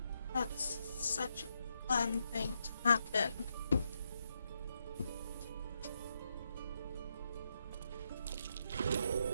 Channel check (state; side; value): inverted; both; correlation -0.81